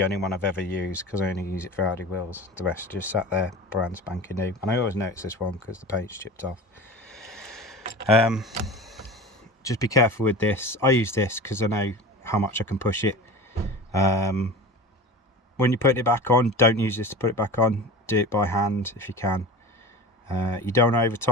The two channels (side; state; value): both; normal; correlation 0.34